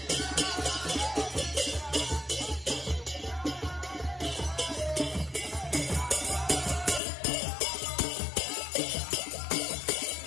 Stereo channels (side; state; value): right; drops out; at 7.0 s